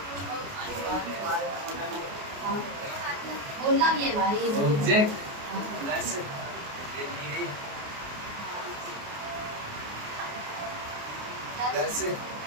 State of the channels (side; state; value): left; late; 28 ms